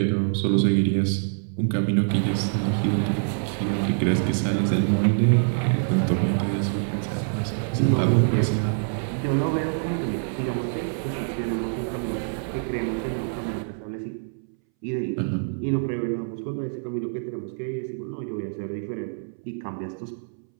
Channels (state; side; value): silent; left; 61 dB below the other